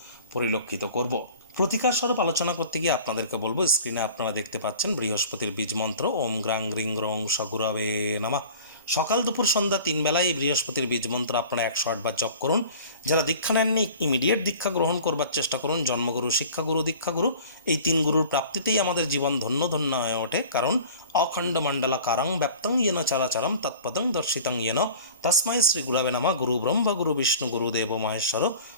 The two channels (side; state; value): both; inverted; correlation -0.43